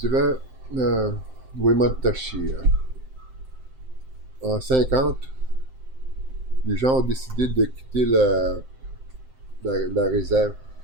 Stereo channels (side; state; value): left; late; 7.7 ms